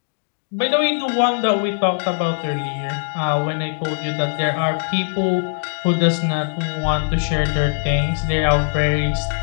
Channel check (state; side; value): silent; right; 65 dB below the other